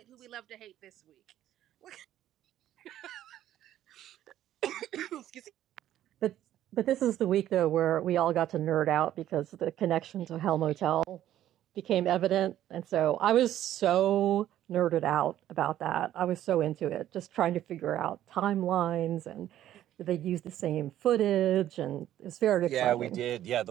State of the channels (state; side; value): quieter; left; 12.3 dB